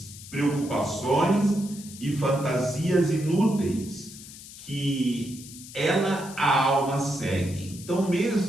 preocupações e fantasias inúteis que a alma segue. Então,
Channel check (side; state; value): left; noise; hiss, 16 dB below the sound